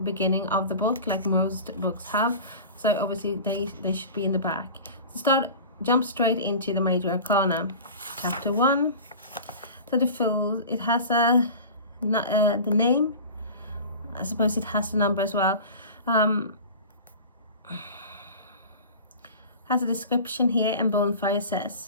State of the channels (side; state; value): both; inverted; correlation -0.36